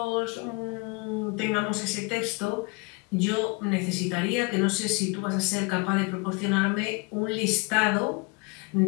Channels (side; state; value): right; quieter; 29.1 dB